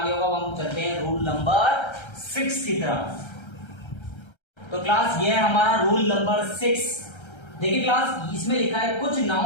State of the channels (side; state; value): right; late; 1.3 ms